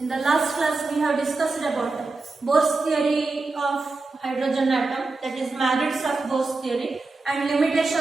the last class, we have discussed about Bohr's theory of hydrogen atom, that is merits of Bohr's theory and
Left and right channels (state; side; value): quieter; left; 3.7 dB